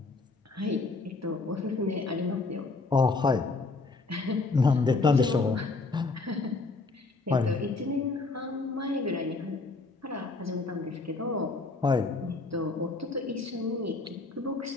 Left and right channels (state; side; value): quieter; right; 3.7 dB